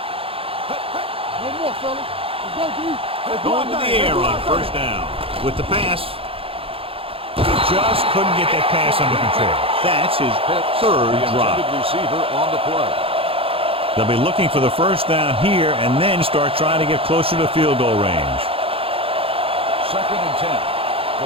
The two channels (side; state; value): left; late; 0.27 ms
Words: Hey. One more, fella. Let's go, dude. Going to the air on first down. With the pass. He just couldn't get that pass under control. That's his third drop. Receiver on the play. They'll be looking for the first down here and then start trying to get closer to field goal range. 2nd and 10.